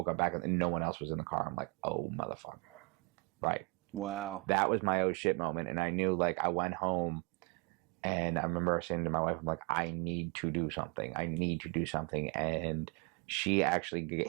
up back and no one else was in the car. I'm like, oh, motherfucker. Right. Wow. That was my oh shit moment. And I knew, I went home, and I remember saying to my wife, I'm like, I need to do something. And she actually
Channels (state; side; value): quieter; left; 28.4 dB